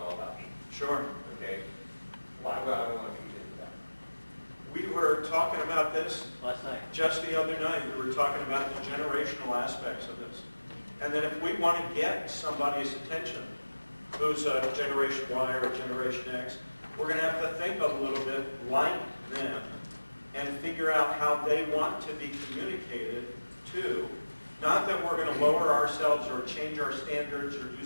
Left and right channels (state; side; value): inverted; both; correlation -1.00